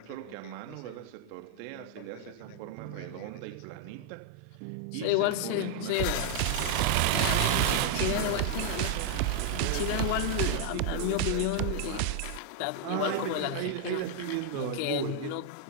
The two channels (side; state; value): both; different; correlation 0.00